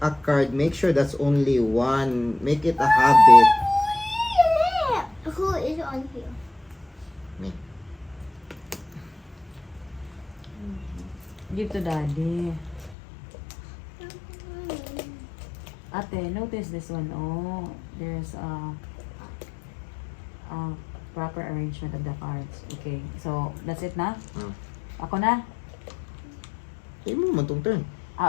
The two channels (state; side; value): drops out; right; at 13.0 s